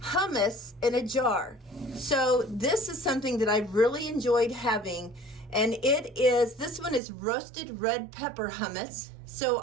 hummus in a jar. So this is something that I've really enjoyed having, and this one is roasted red pepper hummus. So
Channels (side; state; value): left; drops out; at 7.0 s